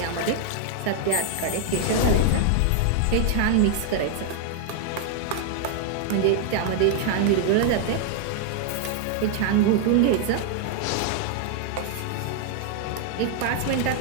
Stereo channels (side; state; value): both; different; correlation 0.00